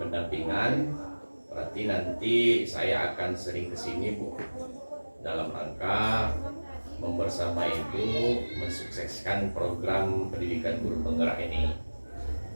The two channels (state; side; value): inverted; both; correlation -1.00